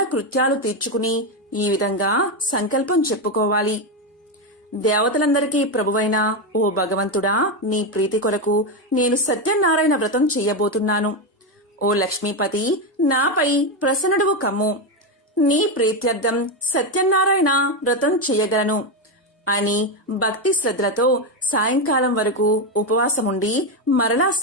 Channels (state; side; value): normal; both; correlation 0.09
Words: తీర్చుకుని ఈ విధంగా సంకల్పం చెప్పుకోవాలి. దేవతలందరికీ ప్రభువైన ఓ భగవంతుడా, నీ ప్రీతి కొరకు నేను సత్యనారాయణ వ్రతం చెయ్యబోతున్నాను. ఓ లక్ష్మీపతి, నాపై ప్రసన్నుడువు కమ్ము. నీ ప్రీత్యర్థం సత్యనారాయణ వ్రతం చెయ్యగలను అని భక్తి శ్రద్ధలతో సాయంకాలం వరకు ఉపవాసముండి మరలా